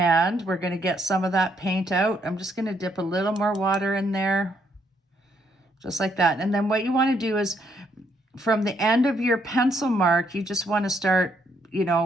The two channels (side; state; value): both; normal; correlation 0.73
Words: we're going to get some of that paint out. I'm just going to dip a little more water in there, just like that. And then what you want to do is from the end of your pencil mark, you just want to start,